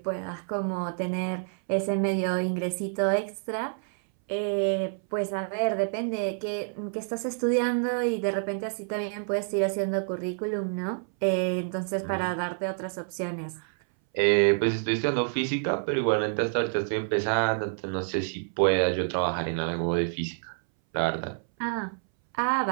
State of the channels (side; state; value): left; silent; 59 dB below the other